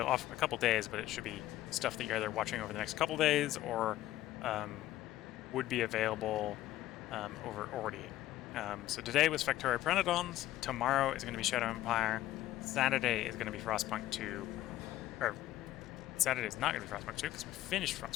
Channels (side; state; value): right; quieter; 14.5 dB